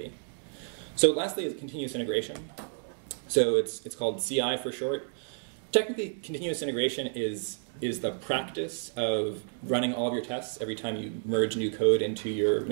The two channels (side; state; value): left; silent; digital silence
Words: So lastly is continuous integration. So it's called CI for short. Technically, continuous integration is the practice of running all of your tests every time you merge new code into your